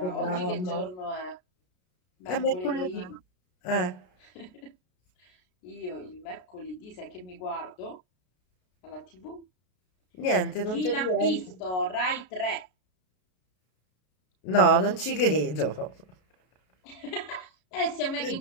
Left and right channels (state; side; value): late; right; 33 ms